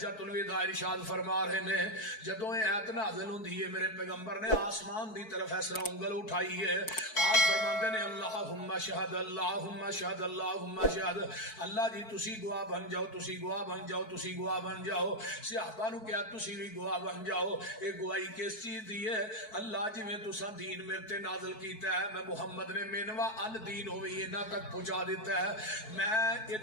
الوداع ارشاد فرما رہے نے۔ جدوں اے ایت نازل ہوندی ہے میرے پیغمبر نے آسمان دی طرف اس طرح انگل اٹھائی ہے، آپ فرماندے نے اللہم شہد اللہم شہد اللہم شہد، اللہ جی تسی گواہ بن جاؤ، تسی گواہ بن جاؤ، تسی گواہ بن جاؤ۔ صحابہ نو کہا تسی بھی گواہ بن جاؤ۔ اے گواہی کس چیز دی ہے؟ اللہ جی میں تساں دین میرے تے نازل کیتا ہے، میں محمد نے مینوا ان دین ہوئی انہاں تک پہنچا دیتا ہے، میں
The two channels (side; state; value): right; late; 4.6 ms